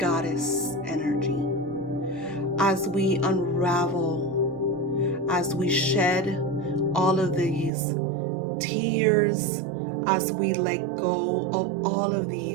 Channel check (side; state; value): left; drops out; at 7.7 s